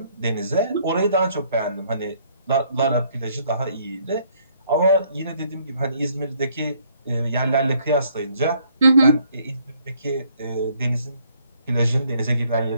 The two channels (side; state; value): both; inverted; correlation -0.66